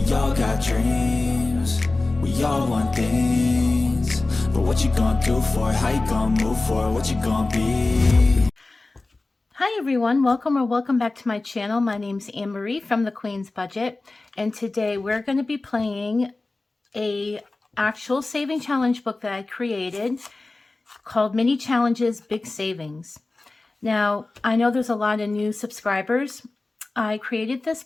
all got dreams, we all want things. But what you gonna do for it? How you gonna move for it? What you gonna be? Hi everyone, welcome back to my channel. My name's Anne-Marie from The Queen's Budget, and today we're going to be playing a actual saving challenge book that I created called Mini Challenges Big Savings. Now, I know there's a lot of new subscribers. I created this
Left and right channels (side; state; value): right; quieter; 3.2 dB